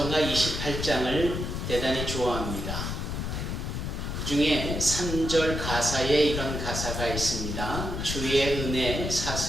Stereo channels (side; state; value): left; noise; rumble, 3 dB below the sound